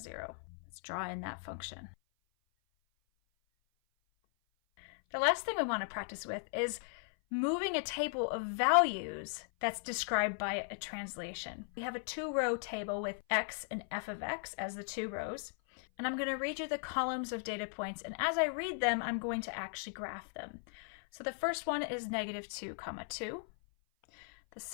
Let's draw in that function. The last thing we want to practice with is moving a table of values that's described by a translation. We have a 2-row table with x and f of x as the 2 rows. And I'm going to read you the columns of data points. And as I read them, I'm going to actually graph them. So the first one is -2, 2. The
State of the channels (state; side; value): silent; right; 53 dB below the other